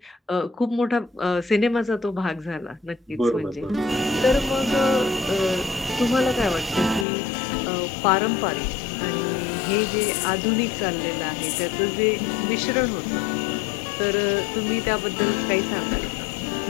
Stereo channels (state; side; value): drops out; right; at 7.1 s